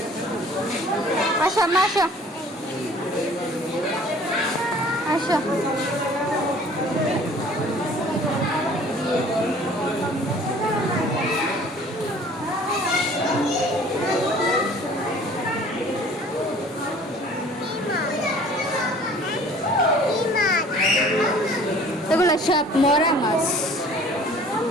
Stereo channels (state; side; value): normal; both; correlation 0.51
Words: আসো মা আসো আসো এগুলো সব মরা মাছ